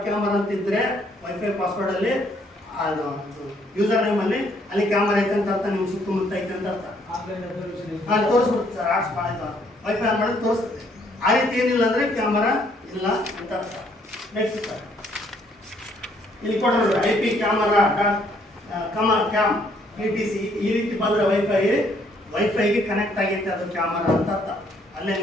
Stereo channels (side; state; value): both; normal; correlation 0.67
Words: ಅಂತಿದ್ರೆ ವೈಫೈ ಪಾಸ್ವರ್ಡ್ ಅಲ್ಲಿ ಯೂಸರ್ ನೇಮ್ ಅಲ್ಲಿ ಅಲ್ಲಿ ಕ್ಯಾಮರಾ ಐತೆ ಅಂತ ಅರ್ಥ, ನಿಮ್ಗೆ ಸುತ್ತಮುತ್ತ ಐತೆ ಅಂತ ಅರ್ಥ. ತೋರಿಸ್ಬಿಡುತ್ತೆ ಸರ್, ಆರ್ಟ್ಸ್ ಮಾಡಿದ ವೈಫೈ ಆನ್ ಮಾಡಿದ್ರೆ ತೋರಿಸುತ್ತೆ. ಆ ರೀತಿ ಏನಿಲ್ಲ ಅಂದ್ರೆ ಕ್ಯಾಮರಾ ಇಲ್ಲ ಅಂತ ಅರ್ಥ. ನೆಕ್ಸ್ಟ್ ಸರ್ ಇಲ್ಲಿ ಕೊಡೋದು IP ಕ್ಯಾಮರಾ ಕ್ಯಾಮ್ ETC ಈ ರೀತಿ ಬಂದ್ರೆ ವೈಫೈಗೆ ಕನೆಕ್ಟ್ ಆಗೈತೆ ಅದು ಕ್ಯಾಮರಾ ಅಂತ ಅರ್ಥ. ಅಲ್ಲೇ